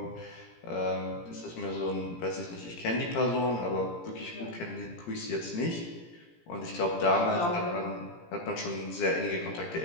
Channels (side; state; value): right; late; 17 ms